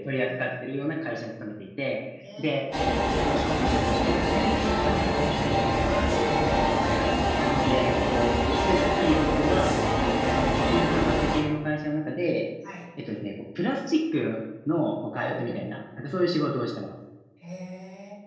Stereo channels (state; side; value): identical; both; correlation 1.00